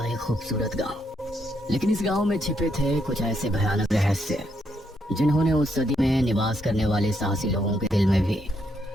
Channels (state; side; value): normal; both; correlation 0.76